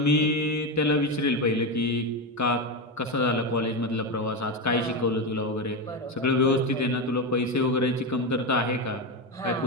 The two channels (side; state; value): both; normal; correlation 0.13